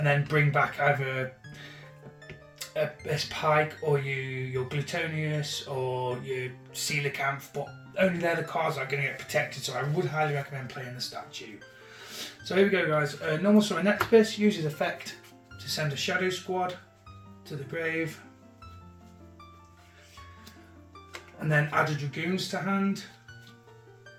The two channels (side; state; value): both; identical; correlation 1.00